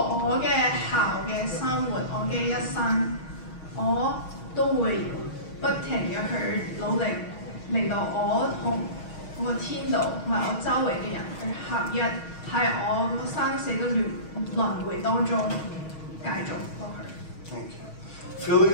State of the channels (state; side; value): late; right; 6.3 ms